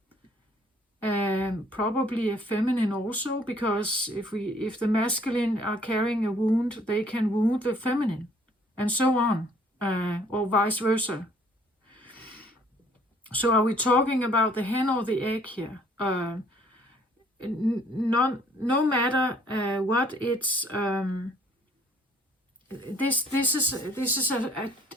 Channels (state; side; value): normal; both; correlation 0.60